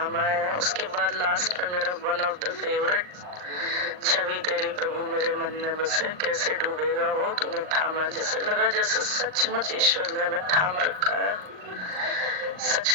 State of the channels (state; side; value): late; left; 39 ms